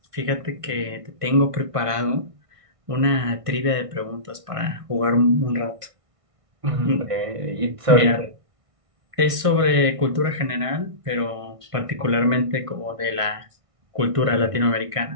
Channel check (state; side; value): late; left; 1.6 ms